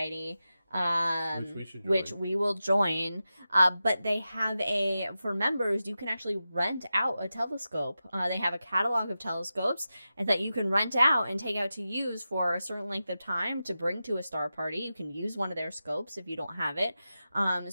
which we will join. But they have for members, you can actually rent out a telescope. They have a catalog of telescopes and that you can rent out and take out to use for a certain length of time to bring to a star party. You can use one of their scopes if you don't have it.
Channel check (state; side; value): inverted; both; correlation -0.92